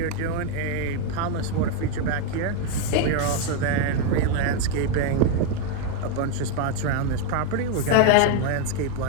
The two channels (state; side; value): different; both; correlation 0.01